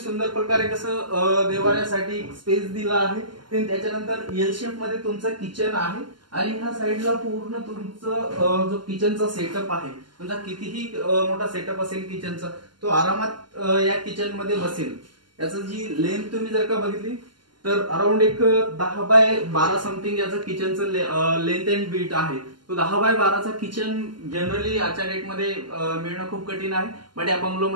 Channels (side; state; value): left; late; 0.72 ms